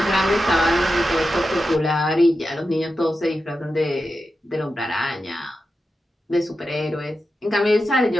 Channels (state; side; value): normal; both; correlation 0.90